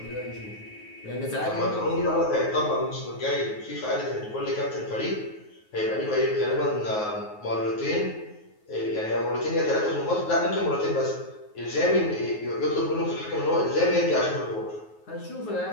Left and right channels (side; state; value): right; late; 9.4 ms